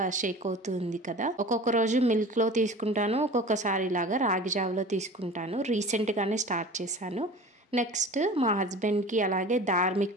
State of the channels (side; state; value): both; normal; correlation 0.39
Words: షేక్ అవుతుంది కదా. ఒక్కొక్క రోజు మిల్క్ లో తీసుకుంటాను, ఒక్కొక్కసారి లాగా రాగి జావలో తీసుకుంటాను. రీసెంట్ గానే స్టార్ట్ చేశాను. నెక్స్ట్ మా హస్బెండ్ కి అలాగే